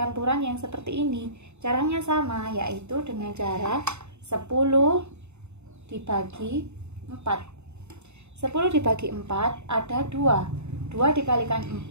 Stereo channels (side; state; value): left; late; 0.82 ms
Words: yang seperti ini. Caranya sama, yaitu dengan cara 10 dibagi 4. 10 dibagi 4 ada 2. 2 dikalikan